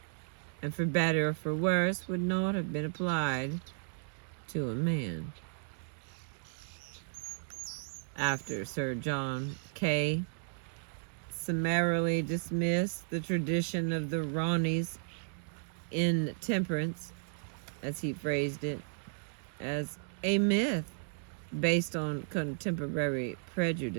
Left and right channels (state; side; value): silent; left; digital silence